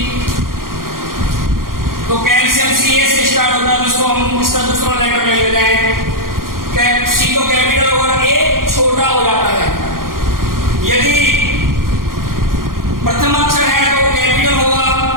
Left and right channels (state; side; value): late; left; 0.91 ms